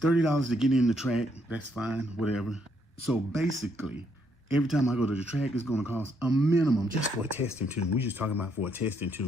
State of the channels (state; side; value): normal; both; correlation 0.73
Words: to get in the track. That's fine, whatever. So basically, every time I go to the track, it's gonna cost a minimum just for a testing tune. We're just talking about for a testing